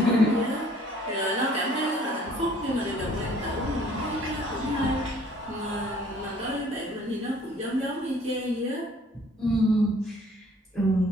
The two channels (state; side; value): normal; both; correlation 0.56